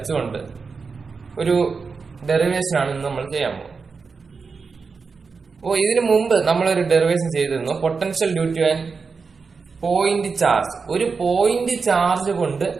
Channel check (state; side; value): quieter; left; 4.9 dB